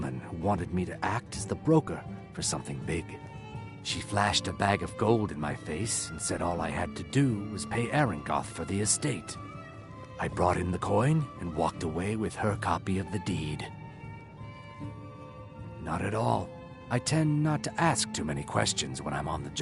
who wanted me to act as the broker for something big. She flashed a bag of gold in my face and said all I had to do was pay Arangoth for the estate. I brought in the coin and walked away with her copy of the deed. Not at all. I tend not to ask too many questions when I'm on the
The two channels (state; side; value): identical; both; correlation 1.00